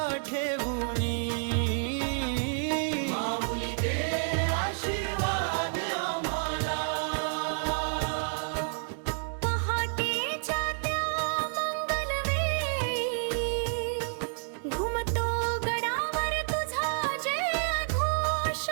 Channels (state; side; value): silent; left; digital silence